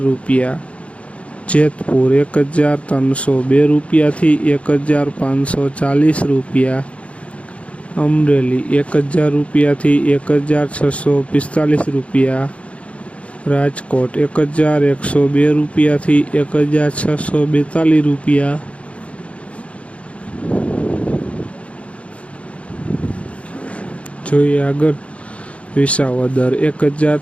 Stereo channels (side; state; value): right; late; 0.063 ms